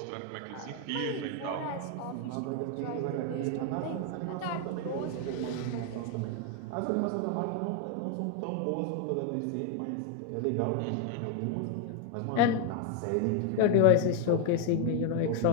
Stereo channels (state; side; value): different; both; correlation 0.01